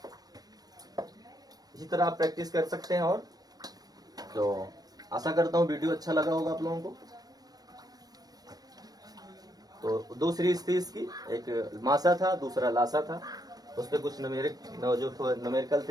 इसी तरह आप प्रैक्टिस कर सकते हैं। और तो आशा करता हूँ वीडियो अच्छा लगा होगा आप लोगों को। तो दो सीरीज थी इसकी, एक मासा था, दूसरा लासा था, उस पर कुछ न्यूमेरिकल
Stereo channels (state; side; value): late; left; 0.19 ms